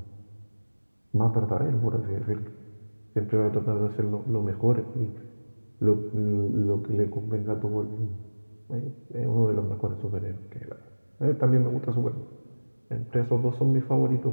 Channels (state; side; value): inverted; both; correlation -1.00